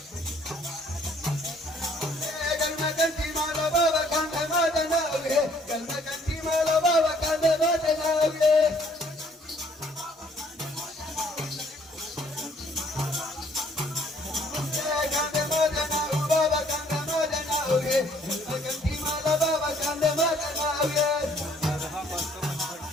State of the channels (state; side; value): normal; both; correlation 0.62